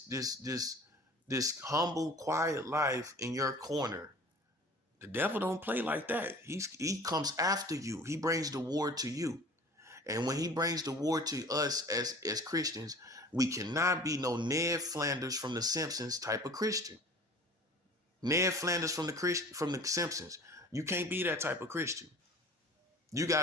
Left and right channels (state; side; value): normal; both; correlation 0.44